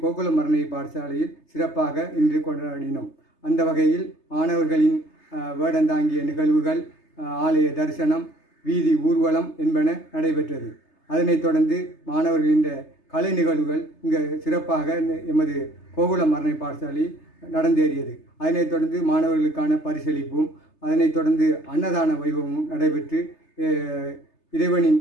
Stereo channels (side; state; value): right; late; 3.3 ms